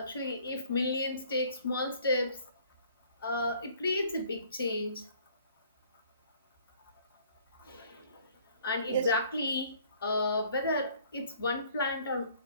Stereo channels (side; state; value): both; inverted; correlation -0.58